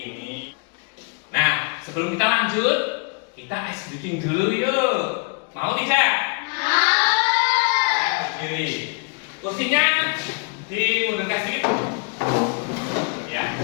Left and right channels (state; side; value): quieter; right; 35.7 dB